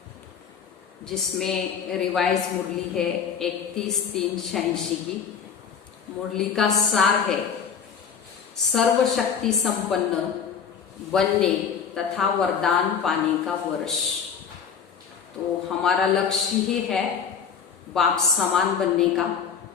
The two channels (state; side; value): quieter; right; 7.0 dB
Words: जिसमें रिवाइज मुरली है 31-3-86 की। मुरली का सार है सर्वशक्ति संपन्न बनने तथा वरदान पाने का वर्ष। तो हमारा लक्ष्य ही है बाप समान बनने का।